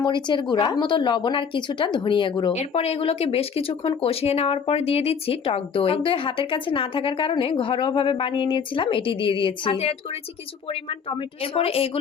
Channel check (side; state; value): right; quieter; 6.5 dB